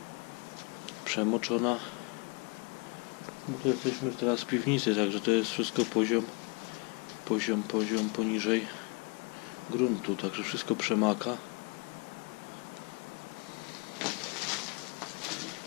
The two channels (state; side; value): quieter; right; 31.3 dB